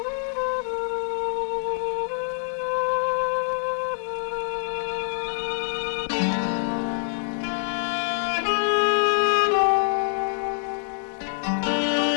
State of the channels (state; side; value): silent; right; digital silence